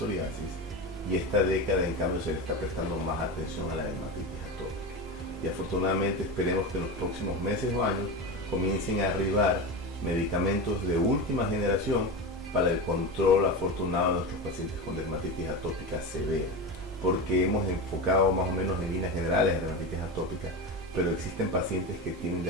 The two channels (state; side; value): normal; both; correlation 0.22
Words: y esta década en cambio se le está prestando más atención a la dermatitis atópica. Y afortunadamente esperemos que en los próximos meses o años comiencen a arribar medicamentos de última generación para el control afortunado de nuestros pacientes con dermatitis atópica severa, porque hemos enfocado más o menos en líneas generales de dermatitis atópica, pero existen pacientes que tienen